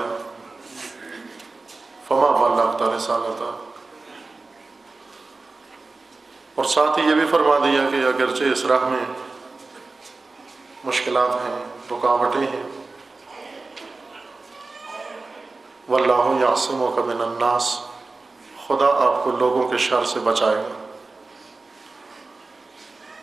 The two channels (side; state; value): left; quieter; 3.6 dB